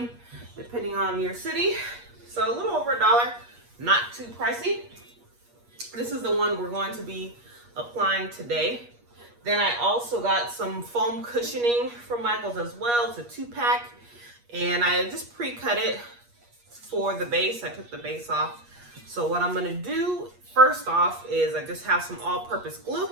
depending on your city. So a little over $1, not too pricey. This is the one we're going to be applying today. Then I also got some foam cushioning from Michael's as well. It's a 2-pack. And I just pre-cut it for the base. I took the base off. So what I'm gonna do first off is I just have some all-purpose glue,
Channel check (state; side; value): late; left; 8.4 ms